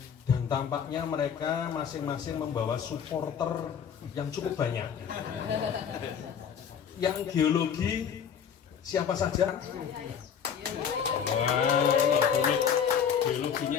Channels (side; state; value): right; quieter; 7.7 dB